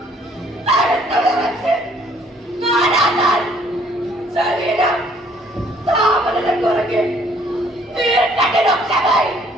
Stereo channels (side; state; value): both; normal; correlation 0.62